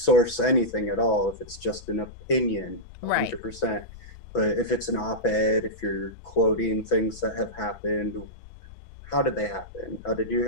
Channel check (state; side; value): late; right; 6.0 ms